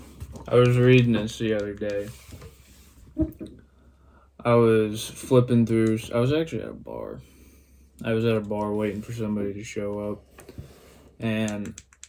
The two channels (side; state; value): both; identical; correlation 1.00